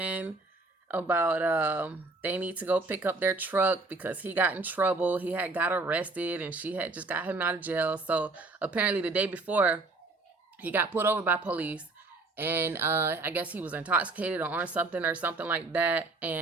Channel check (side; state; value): left; quieter; 3.4 dB